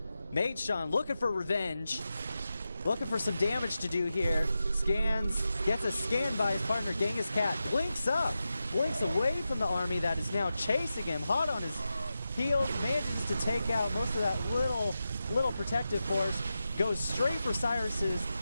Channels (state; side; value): inverted; both; correlation -0.91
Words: Maidshon looking for revenge. Looking for some damage to do here. Scans. Gets a scan by his partner Genghis Cat. Blinks up. Blinks away from the army that is now chasing him. Hot on his heels. Manages to take out most of that little protective force. Goes straight for Cyrus's